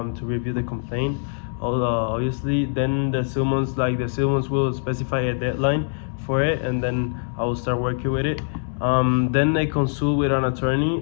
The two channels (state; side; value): silent; right; digital silence